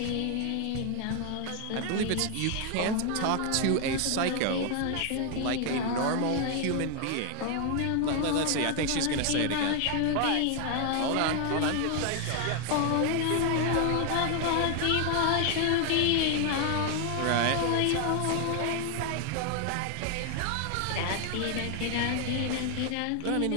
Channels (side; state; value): both; different; correlation 0.00